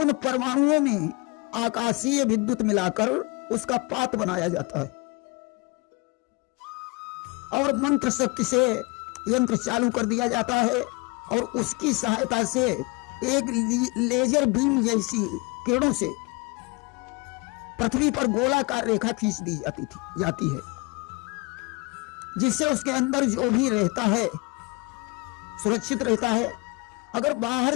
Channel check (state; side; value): quieter; right; 27.1 dB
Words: उन परमाणुओं में आकाशीय विद्युत मिलाकर उसका पात बनाया जाता है और मंत्र शक्ति से यंत्र चालू कर दिया जाता है और उसकी सहायता से एक लेजर बीम जैसी किरणों से पृथ्वी पर गोलाकार रेखा खींच दी जाती है, जिससे उसके अंदर जो भी रहता है सुरक्षित रहता है। अगर बाहर